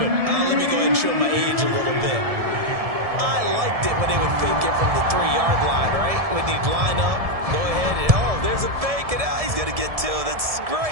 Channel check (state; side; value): late; left; 1.7 ms